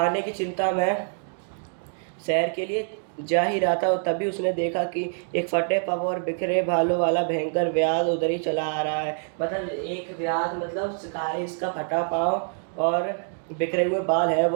की चिंता में शहर के लिए जा ही रहा था, और तभी उसने देखा कि एक फटे पग और बिखरे बालों वाला भयंकर व्याध उधर ही चला आ रहा है। मतलब एक व्याध मतलब शिकारी, इसका फटा पाँव और बिखरे हुए बाल है,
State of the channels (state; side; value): silent; left; digital silence